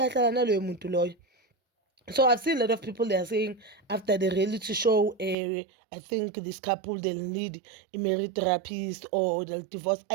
naloyo muntu loyo. So I've seen a lot of people, they are saying after the reality show, I think this couple, they'll need a marriage therapist or they'll divorce.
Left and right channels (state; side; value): drops out; left; at 5.4 s